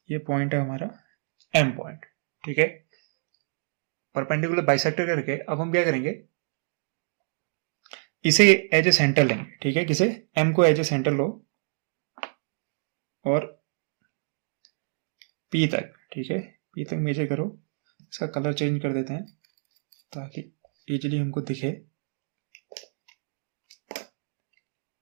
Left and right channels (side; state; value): left; silent; digital silence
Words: ये पॉइंट है हमारा एम पॉइंट। ठीक है, परपेंडिकुलर बाइसेक्टर करके अब हम क्या करेंगे, इसे एज ए सेंटर लेंगे। ठीक है, किसे, एम को एज ए सेंटर लो और पी तक, ठीक है, पी तक मेजर करो। इसका कलर चेंज कर देते हैं ताकि इजीली हमको दिखे।